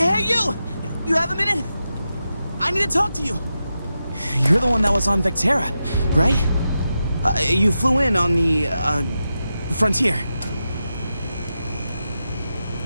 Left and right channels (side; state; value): both; inverted; correlation -0.89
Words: you! You have a minute? I need to talk to you. You're the one that was on Vectera, right? You flew in on the, Frontier.